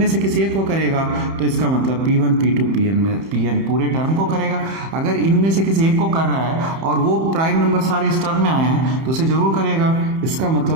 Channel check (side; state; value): left; late; 31 ms